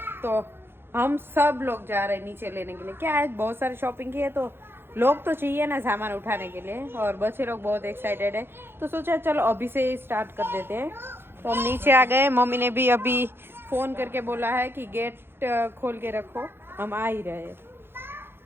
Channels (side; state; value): left; late; 0.11 ms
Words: तो हम सब लोग जा रहे हैं नीचे लेने के लिए। क्या है, बहुत सारी शॉपिंग की है, तो लोग तो चाहिए ना सामान उठाने के लिए, और बच्चे लोग बहुत एक्साइटेड है, तो सोचा चलो अभी से स्टार्ट कर देते हैं। तो हम नीचे आ गए। मम्मी ने भी अभी फोन करके बोला है कि गेट खोल के रखो, हम आ ही रहे हैं,